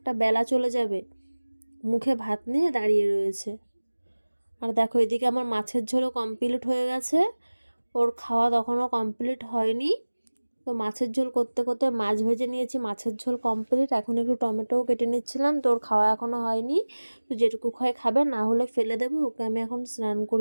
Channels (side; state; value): both; inverted; correlation -1.00